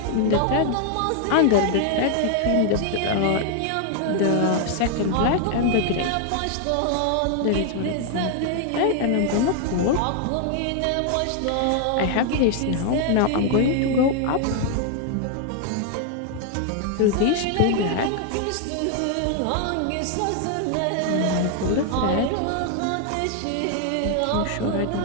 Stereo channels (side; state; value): both; different; correlation 0.00